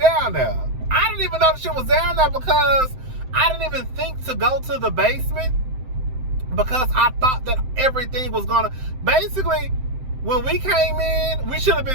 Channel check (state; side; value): late; left; 7.7 ms